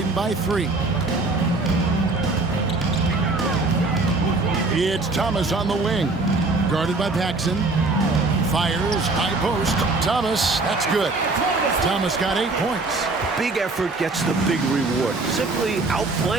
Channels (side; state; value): left; quieter; 3.3 dB